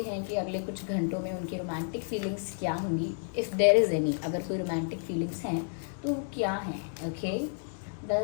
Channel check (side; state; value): right; silent; digital silence